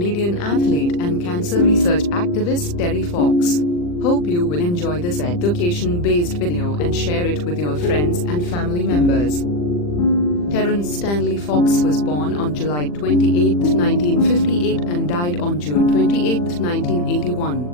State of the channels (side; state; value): right; late; 40 ms